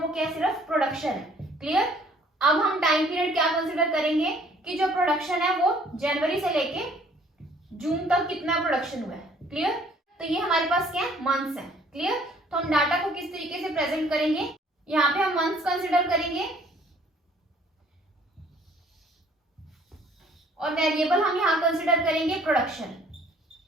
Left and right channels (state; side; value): normal; both; correlation 0.58